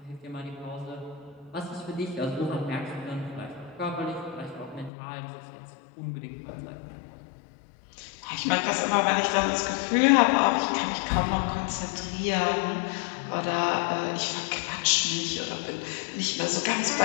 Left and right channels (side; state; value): right; drops out; at 4.9 s